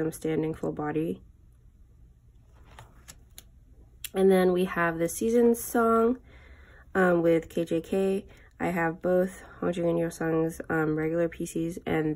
standing full body. And then we have the Seasons song with KJK. I have both Hongjoong and Yeosang's regular PCs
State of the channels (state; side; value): identical; both; correlation 1.00